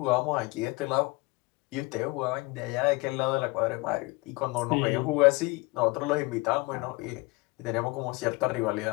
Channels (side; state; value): right; quieter; 24.1 dB